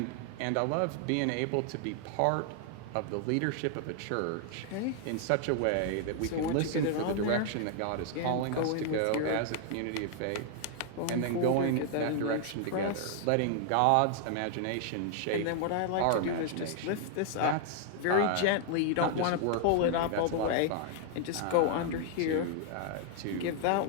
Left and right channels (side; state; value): both; different; correlation 0.00